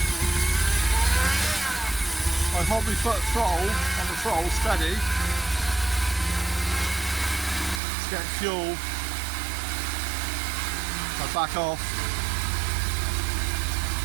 I hold my foot throttle on the throttle steady. It's getting fuel. I back off.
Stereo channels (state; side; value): drops out; left; at 7.8 s